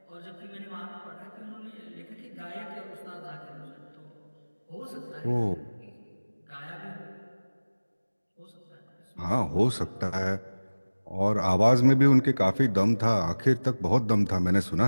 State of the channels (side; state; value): both; inverted; correlation -1.00